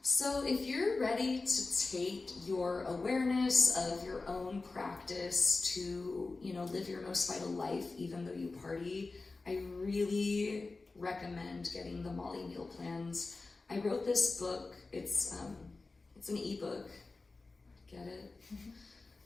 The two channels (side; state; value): right; quieter; 3.7 dB